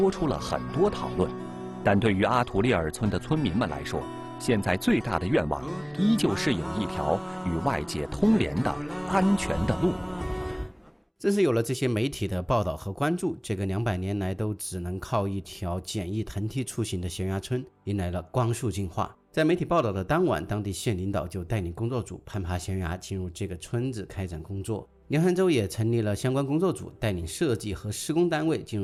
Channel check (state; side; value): identical; both; correlation 1.00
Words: 出了很多讨论。但对于阿图利尔村的村民们来说，现在最大的愿望依旧是有一条与外界通联的安全的路。正是有了这些媒体的报道和关注，这个200年来都只能靠一条简易藤梯出行的悬崖村迎来了光速进化。在媒体报道的当晚，当地县领导就带领工作组攀爬悬崖进入这个村子开展工作。凉山州也成立了相关工作组，带领设计和施工单位进